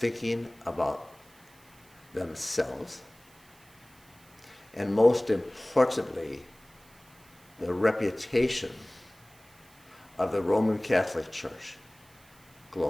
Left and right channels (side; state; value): right; noise; hiss, 27 dB below the sound